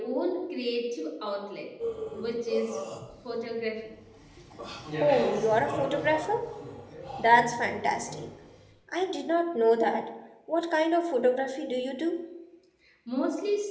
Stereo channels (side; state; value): both; identical; correlation 1.00